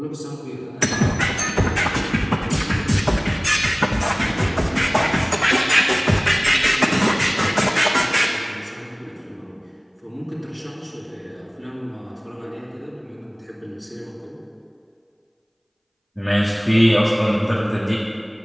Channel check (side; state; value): both; identical; correlation 1.00